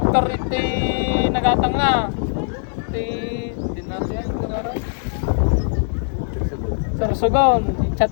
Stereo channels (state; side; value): silent; right; digital silence